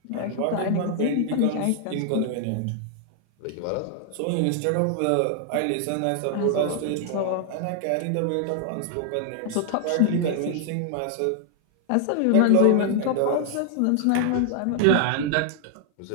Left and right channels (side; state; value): both; different; correlation 0.00